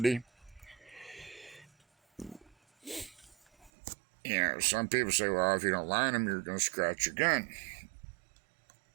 Some people say, well, if you don't line them, you're going to scratch your gun.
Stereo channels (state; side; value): drops out; left; at 3.7 s